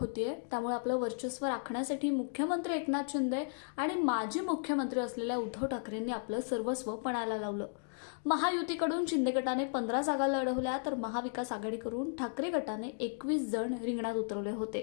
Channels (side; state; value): right; silent; digital silence